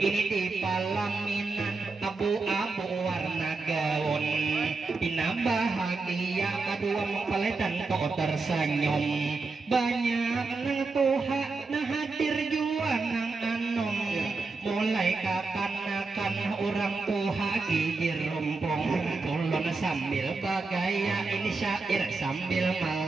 di palaminan abu-abu warna gaun. Ina bahagia kedua mempelai dan kok tersenyum. Banyak nang tuha nah hadir jua nang anom. Mulai kapan-kapan orang tuha gigir rumpung. Ulun sambil bagaya ini syair sambil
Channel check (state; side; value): quieter; left; 4.0 dB